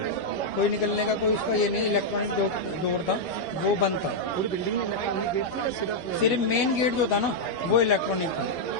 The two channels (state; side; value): late; right; 11 ms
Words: कोई निकलने का कोई उसका ये नहीं। इलेक्ट्रॉनिक डोर था, वो बंद था। पूरी बिल्डिंग में इलेक्ट्रॉनिक गेट थी या सिर्फ मेन गेट जो था ना वो इलेक्ट्रॉनिक था,